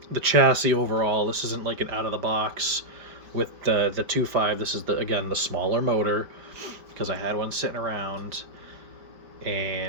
the chassis overall. This isn't like an out of the box with the 2.5. This is the smaller motor, because I had one sitting around,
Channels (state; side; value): late; left; 4.8 ms